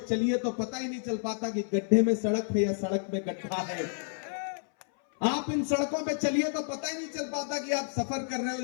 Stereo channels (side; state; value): right; silent; 58 dB below the other